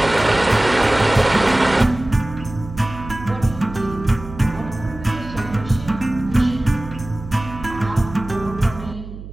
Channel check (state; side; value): noise; right; hum, 13 dB below the sound